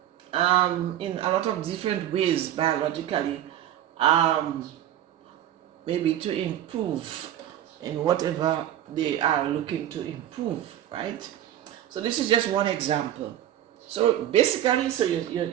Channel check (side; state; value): left; quieter; 11.8 dB